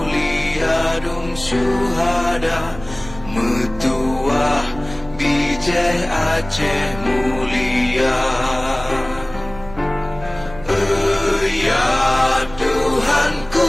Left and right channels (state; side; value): noise; right; rumble, 16 dB below the sound